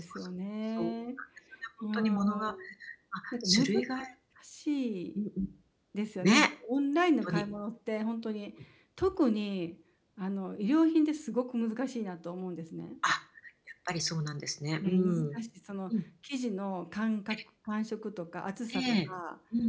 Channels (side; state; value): both; identical; correlation 1.00